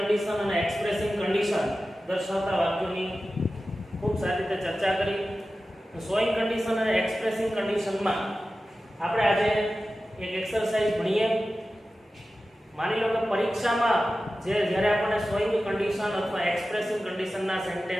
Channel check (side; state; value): both; normal; correlation 0.94